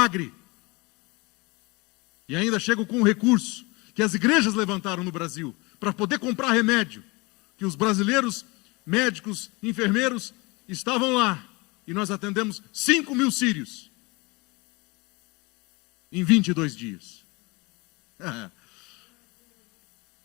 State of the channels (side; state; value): right; quieter; 25.7 dB